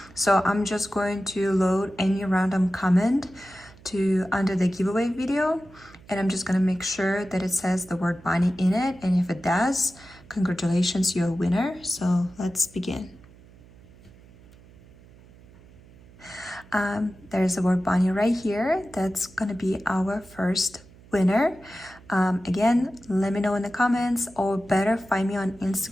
So I'm just going to load any random comment to under the giveaway video, and I'm just gonna make sure that it says the word bunny in it, and if it does, congratulations, you're a winner. So let's begin. There's the word bunny right here. That's gonna be our first winner. Again, let me know in the comments, or better find me on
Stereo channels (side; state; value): right; noise; hum, 24 dB below the sound